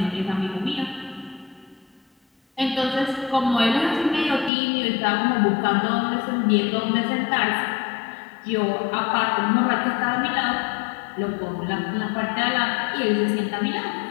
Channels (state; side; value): drops out; right; at 4.5 s